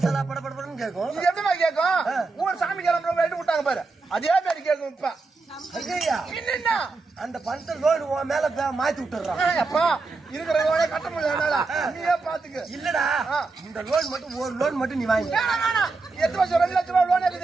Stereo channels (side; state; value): left; quieter; 3.9 dB